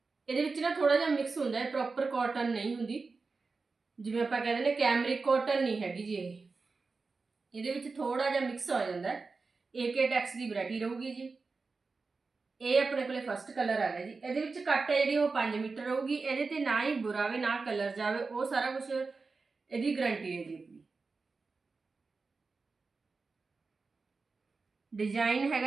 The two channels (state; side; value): quieter; left; 4.2 dB